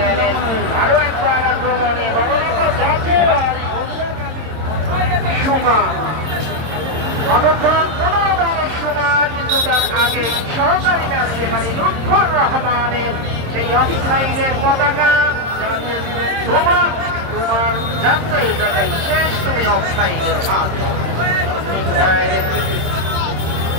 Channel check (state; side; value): late; left; 26 ms